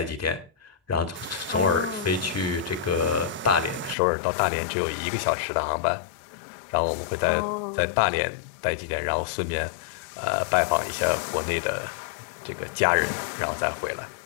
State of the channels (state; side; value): drops out; right; at 4.0 s